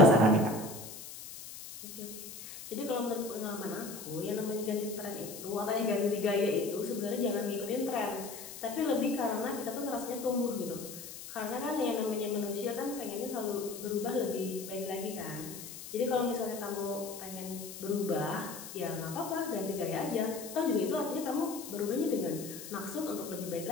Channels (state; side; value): noise; left; hiss, 12 dB below the sound